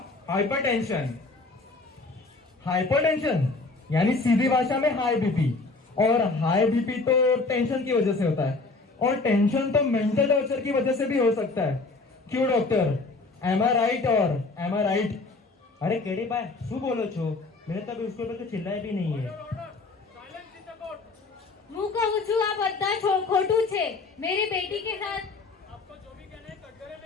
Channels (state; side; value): quieter; right; 3.7 dB